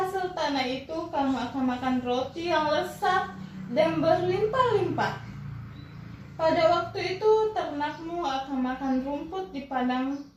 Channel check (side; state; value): both; identical; correlation 1.00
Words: tanah itu kamu akan makan roti yang lezat dan berlimpah-limpah. Pada waktu itu ternakmu akan makan rumput di padang